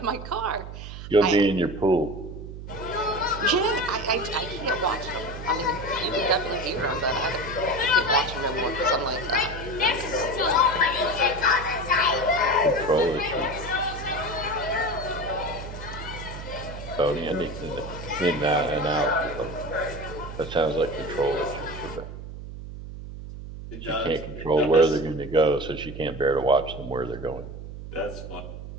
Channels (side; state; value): right; noise; hum, 11 dB below the sound